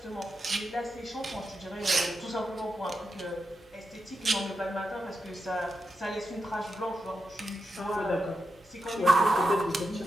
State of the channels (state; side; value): normal; both; correlation 0.88